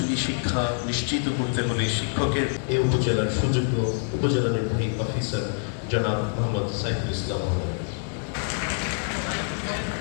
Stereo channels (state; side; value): silent; right; 61 dB below the other